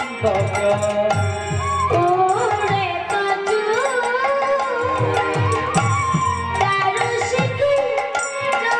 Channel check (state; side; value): identical; both; correlation 1.00